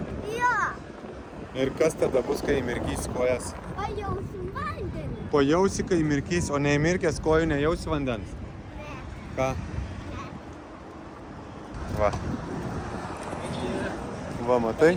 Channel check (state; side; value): identical; both; correlation 1.00